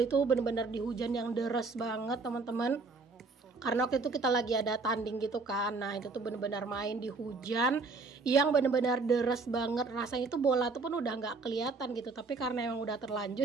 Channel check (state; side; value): quieter; left; 4.0 dB